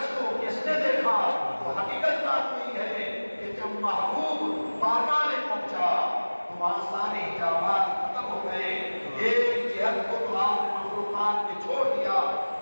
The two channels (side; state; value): both; inverted; correlation -1.00